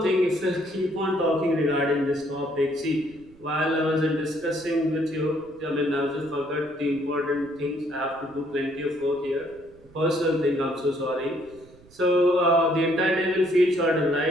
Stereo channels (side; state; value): right; noise; rumble, 26 dB below the sound